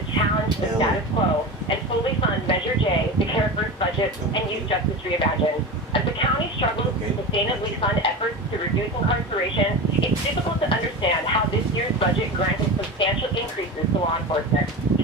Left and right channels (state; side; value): normal; both; correlation 0.27